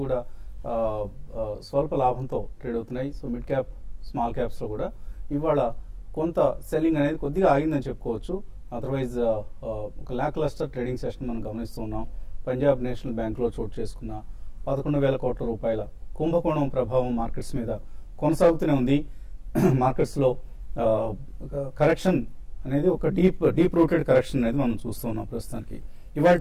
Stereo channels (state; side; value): identical; both; correlation 1.00